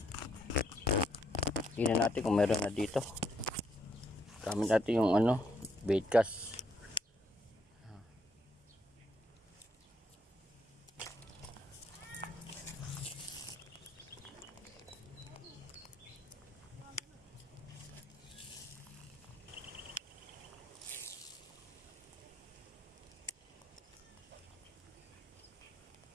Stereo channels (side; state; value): both; normal; correlation 0.72